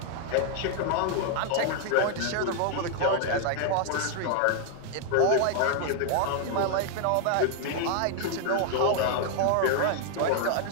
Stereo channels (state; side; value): different; both; correlation 0.00